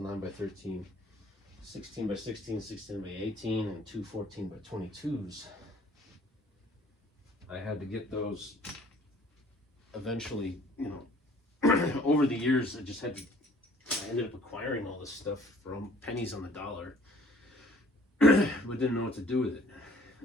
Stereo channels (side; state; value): both; normal; correlation 0.55